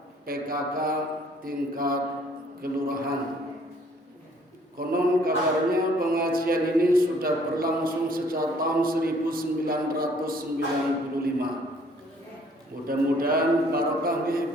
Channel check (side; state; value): both; normal; correlation 0.60